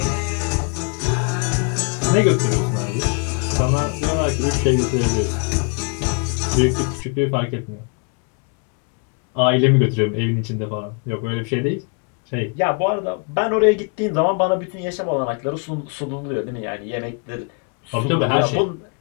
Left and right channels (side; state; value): right; quieter; 37.4 dB